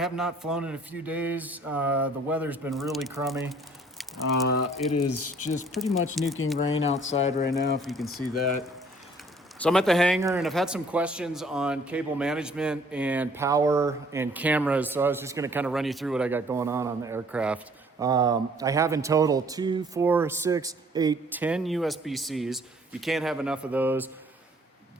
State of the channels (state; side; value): normal; both; correlation 0.58